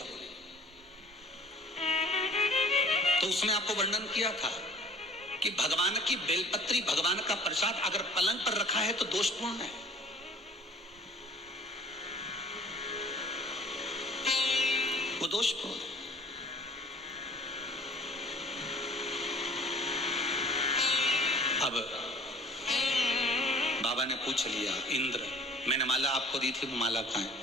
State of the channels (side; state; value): both; normal; correlation 0.49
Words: हो रही। तो उसमें आपको वर्णन किया था कि भगवान की बेलपत्री, भगवान का प्रसाद अगर पलंग पर रखा है तो दोषपूर्ण है। वो दोषपूर्ण है। अब बाबा ने पूछ लिया, इंद्र मैंने माला आपको दी थी, वो माला कहाँ है?